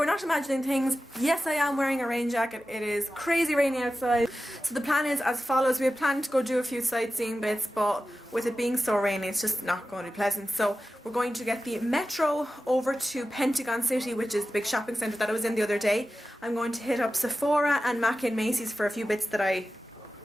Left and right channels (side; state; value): both; normal; correlation 0.93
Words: not imagining things. Yes, I am wearing a rain jacket. It is crazy rainy outside. So the plan is as follows. We had planned to go do a few sightseeing bits, but with it being so rainy, it's just not going to be pleasant. So we're going to get the metro over to Pentagon City, which is the big shopping centre that I was in the other day. I'm going to hit up Sephora and Mackie and Macy's for a few bits that I